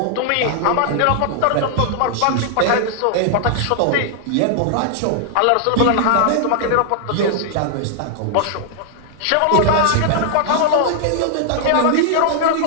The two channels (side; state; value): both; different; correlation -0.01